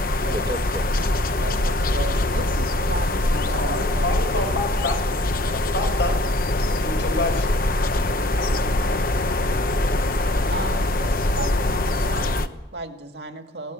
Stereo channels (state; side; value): normal; both; correlation 0.55